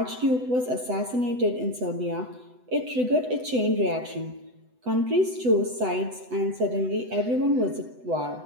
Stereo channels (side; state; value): left; late; 8.0 ms